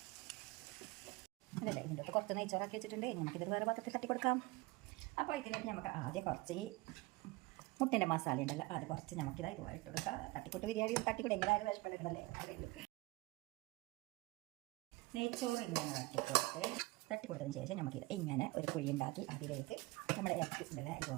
അതല്ലേ, ഇതിൻ്റെ അകത്ത് കുറച്ച് നെയ്ച്ചോറാക്കി വെച്ചിട്ടുണ്ട്. നമുക്കിത് വേറെ പാത്രത്തിൽ തട്ടിക്കൊടുക്കാം. അപ്പോൾ ഇതിലേക്ക് നമുക്ക് ആദ്യം കുറച്ച് ഈ മുട്ടേൻ്റെ മസാല ഉണ്ടല്ലോ, അത് കുറച്ച് നമുക്കിതാ ഇതുപോലെ ഇട്ട് കൊടുക്കാം. തട്ടിക്കൂട്ട് ബിരിയാണി തട്ടിക്കൂട്ട് എങ്ങനെയായാലും വിഷപ്പെടുക്കണല്ലേ. നെയ്ച്ചോറ് ഇങ്ങനെ തട്ടിക്കൊടുത്തതിന് ശേഷം നമുക്കിത് ഇങ്ങനെ ഒരു കുഴി ഉണ്ടാക്കി അതിലേക്ക് നമ്മുടെ ഇറച്ചിട്ടുണ്ടല്ലോ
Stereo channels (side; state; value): left; quieter; 22.0 dB